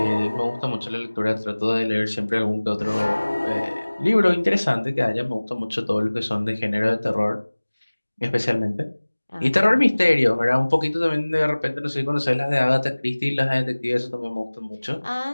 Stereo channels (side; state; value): both; inverted; correlation -1.00